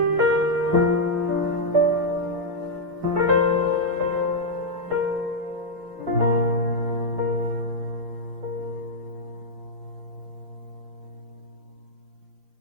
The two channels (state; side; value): late; left; 5.0 ms